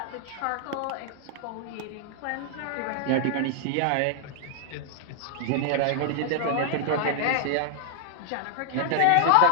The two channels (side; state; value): both; different; correlation 0.00